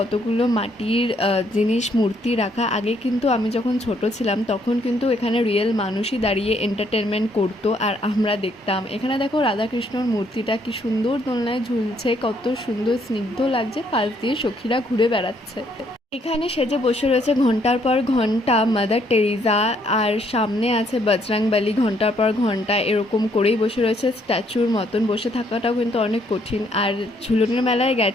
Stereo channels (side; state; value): both; normal; correlation 0.69